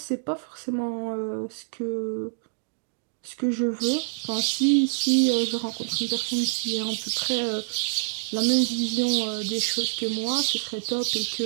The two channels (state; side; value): silent; left; digital silence